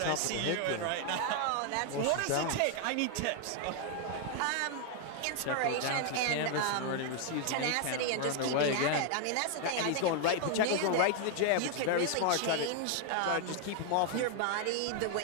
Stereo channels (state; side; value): different; both; correlation 0.00